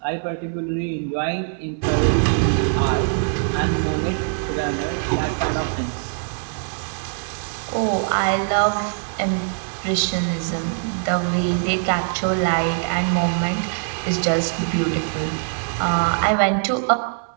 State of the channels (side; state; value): left; silent; 64 dB below the other